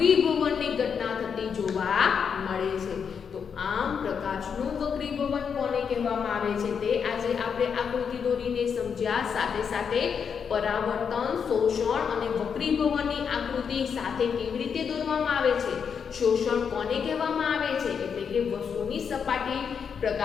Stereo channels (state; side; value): quieter; right; 6.7 dB